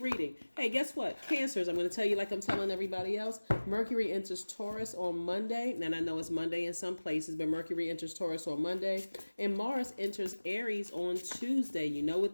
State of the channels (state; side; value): inverted; both; correlation -1.00